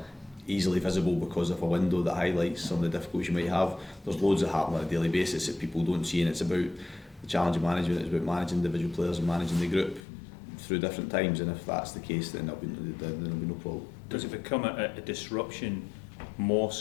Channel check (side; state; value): right; drops out; at 10.0 s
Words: easily visible because of a window that highlights some of the difficulties you might have. There's loads that happen on a daily basis that people don't see, and it's about the challenge of management. It's about managing individual players and managing the group through different times, and if that's the case, then there'll be no problem. Does it become a disruption more